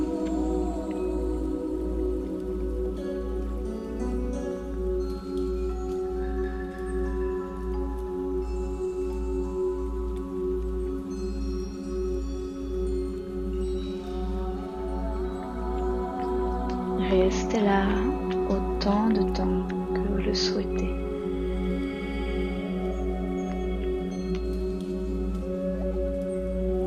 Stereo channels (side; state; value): both; identical; correlation 1.00